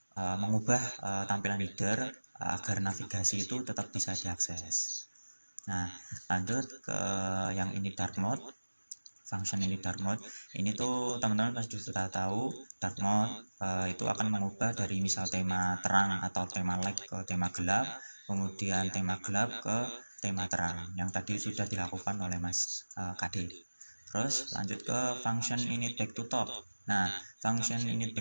mengubah tampilan header agar navigasi itu tetap bisa diakses. Nah, lanjut ke yang ini dark mode. Function ini dark mode ini tuh teman-teman pasti sudah tahu dark mode itu akan mengubah dari misal tema terang atau tema light ke tema gelap, kemudian tema gelap ke tema terang yang tadi sudah dilakukan oleh Mas KD. Terus lanjut ke function init back to top. Nah, function init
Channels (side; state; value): both; inverted; correlation -1.00